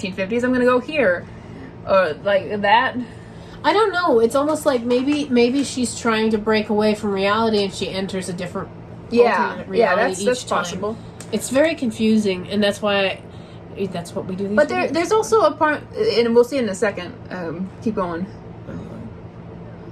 I'm going to go here, or like that? I don't know. It's almost like maybe she's trying to break away from reality and she enters a different alternate reality that's each time. possible. It's very confusing, and that's why that's what we do. But there's also a part, and we'll see in a second. Keep going.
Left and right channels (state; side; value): identical; both; correlation 1.00